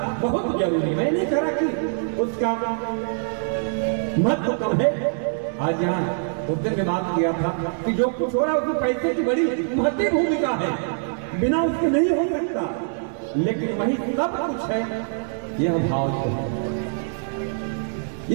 बहुत जरूरी, मैं नहीं कह रहा कि उसका महत्व कम है। आज यहाँ उस दिन में बात किया था कि जो कुछ हो रहा है उसमें पैसे की बड़ी महत्वपूर्ण भूमिका है, बिना उसके नहीं हो सकता। लेकिन वही सब कुछ है, यह भाव जो है,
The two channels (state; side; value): silent; left; digital silence